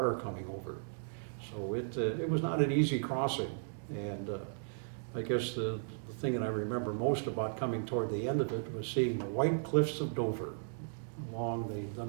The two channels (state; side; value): silent; left; digital silence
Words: coming over. So it was not an easy crossing. And I guess the thing that I remember most about coming toward the end of it was seeing the white cliffs of Dover along the